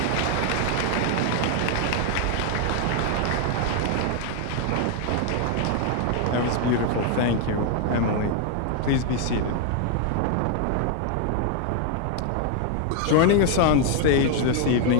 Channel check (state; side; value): different; both; correlation 0.00